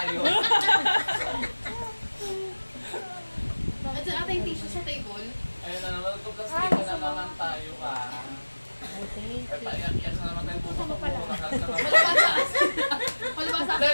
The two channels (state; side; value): inverted; both; correlation -1.00